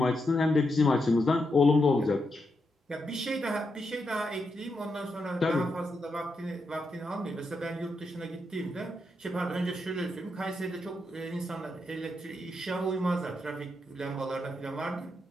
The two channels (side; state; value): both; normal; correlation 0.83